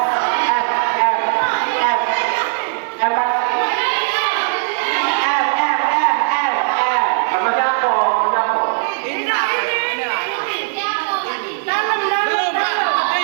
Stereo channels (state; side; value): silent; left; 61 dB below the other